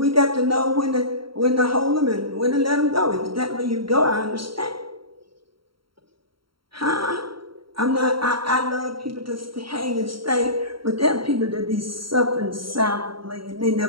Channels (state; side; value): late; left; 0.74 ms